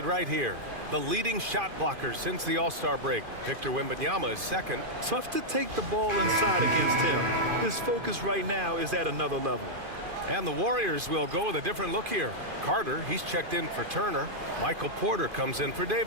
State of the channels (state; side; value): late; left; 2.5 ms